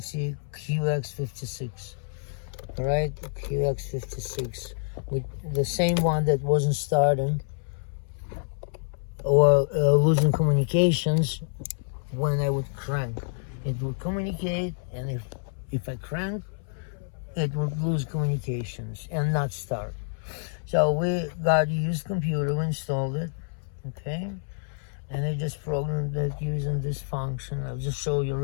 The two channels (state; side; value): silent; right; 60 dB below the other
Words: QX56. Alright, QX56 with the same one that wasn't starting or losing communications when I would crank. It would communicate, and if I crank, it would lose communications and not start. So we got a used computer, we installed it, okay? And I just programmed it using this function. I'll just show you